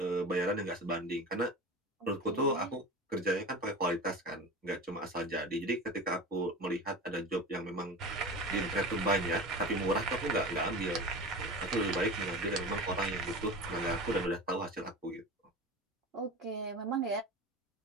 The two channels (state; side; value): normal; both; correlation 0.31